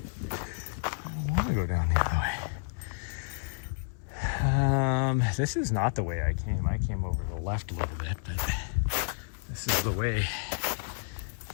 This is not the way I came. I came over the left a little bit, but this is the way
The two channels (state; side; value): silent; right; 58 dB below the other